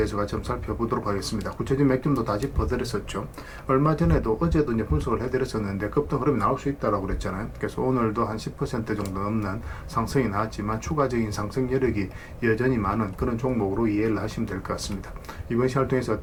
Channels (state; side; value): identical; both; correlation 1.00